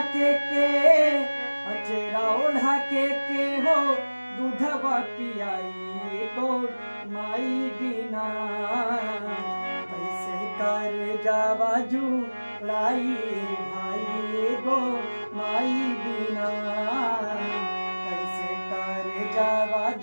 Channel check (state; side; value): inverted; both; correlation -1.00